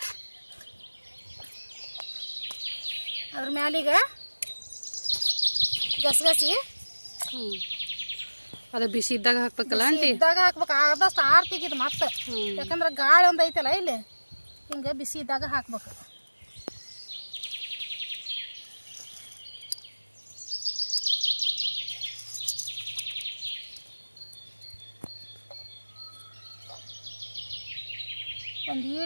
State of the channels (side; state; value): both; inverted; correlation -1.00